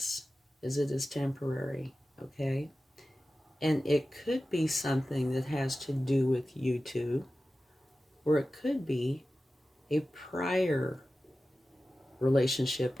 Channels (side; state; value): both; normal; correlation 0.94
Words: is it is temporary, okay? And it could be something that has to do with you two, or it could be a prior relationship